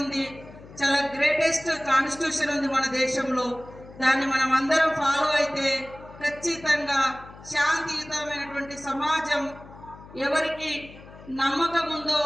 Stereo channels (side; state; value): left; noise; hum, 19 dB below the sound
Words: ఉంది, చాలా గ్రేటెస్ట్ కాన్స్టిట్యూషన్ ఉంది మన దేశంలో. దాన్ని మనం అందరం ఫాలో అయితే ఖచ్చితంగా శాంతియుతమైనటువంటి సమాజం, ఎవరికి నమ్మకం ఉందో